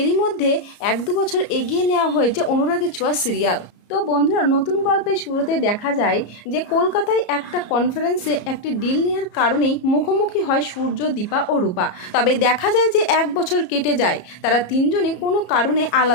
মধ্যে 1-2 বছর এগিয়ে নেওয়া হয়েছে অনুরাগের ছোঁয়া সিরিয়াল। তো বন্ধুরা, নতুন গল্পের শুরুতে দেখা যায় যে কলকাতায় একটা কনফারেন্সে একটি ডিল নেওয়ার কারণেই মুখোমুখি হয় সূর্য, দীপা ও রূপা। তবে দেখা যায় যে 1 বছর কেটে যায়, তারা তিনজনই কোনো কারণে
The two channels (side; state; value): right; late; 34 ms